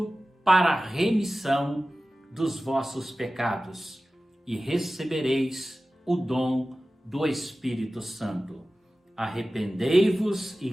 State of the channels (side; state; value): both; normal; correlation 0.96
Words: para a remissão dos vossos pecados e recebereis o dom do Espírito Santo. Arrependei-vos